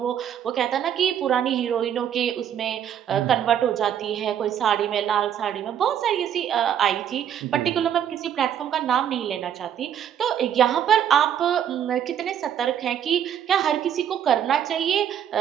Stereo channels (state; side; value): quieter; left; 9.5 dB